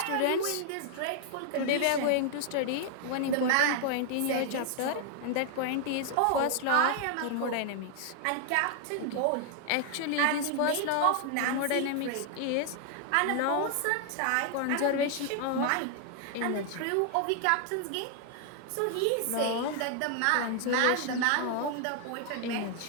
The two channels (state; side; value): different; both; correlation 0.00